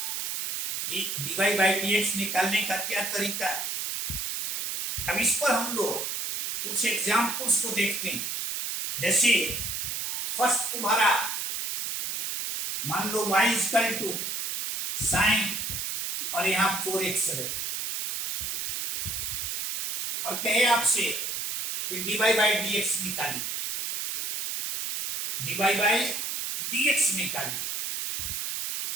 कि dy बाई dx निकालने का क्या तरीका है। अब इस पर हम लोग कुछ एग्जाम्पल्स को देखते हैं। जैसे फर्स्ट तुम्हारा मान लो y इक्वल टू साइन और यहां 4x है, और कहे आपसे कि dy बाई dx निकालिए, dy बाई dx निकालिए।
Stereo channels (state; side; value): noise; right; hiss, 2 dB below the sound